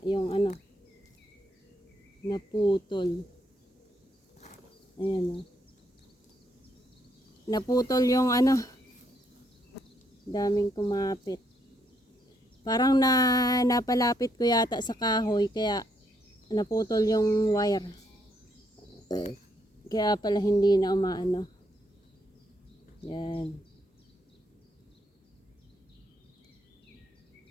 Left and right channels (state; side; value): normal; both; correlation 0.74